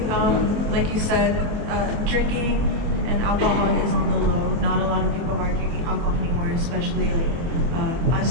like you said, drinking and alcohol is on the low. Not a lot of people are drinking alcohol anymore, especially like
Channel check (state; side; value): late; left; 24 ms